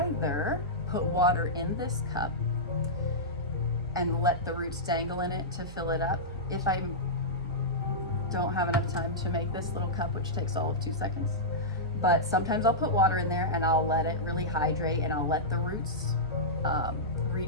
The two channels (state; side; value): normal; both; correlation -0.12